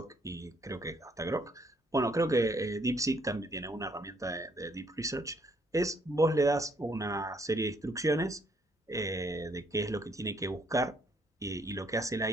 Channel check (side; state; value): both; normal; correlation 0.68